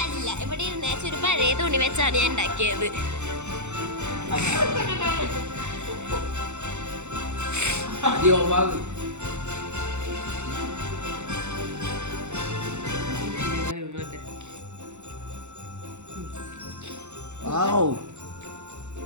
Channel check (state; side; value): late; left; 0.83 ms